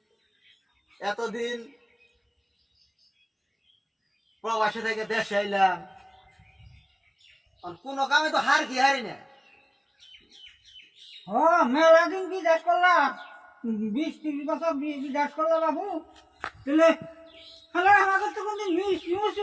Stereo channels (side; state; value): both; identical; correlation 1.00